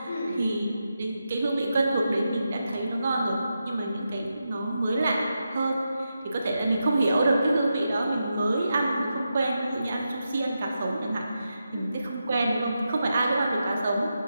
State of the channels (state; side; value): inverted; both; correlation -0.87